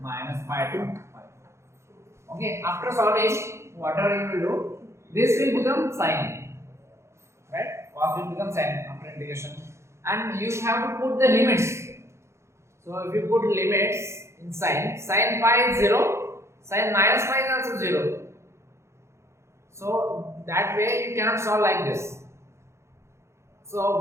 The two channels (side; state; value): left; late; 0.13 ms